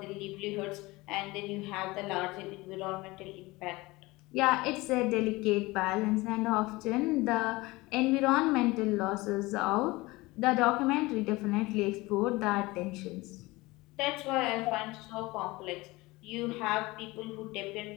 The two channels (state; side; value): quieter; right; 21.6 dB